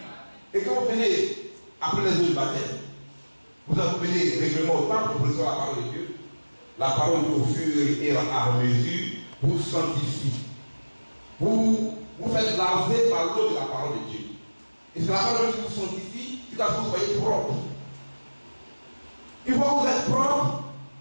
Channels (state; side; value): inverted; both; correlation -1.00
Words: Et quand vous venez après les eaux du baptême, vous venez régulièrement au temple pour recevoir la parole de Dieu. La parole au fur et à mesure vous sanctifie. Vous faites laver par l'eau de la parole de Dieu. Et c'est la parole qui vous sanctifie jusqu'à ce que vous soyez propre. Une fois que vous êtes propre,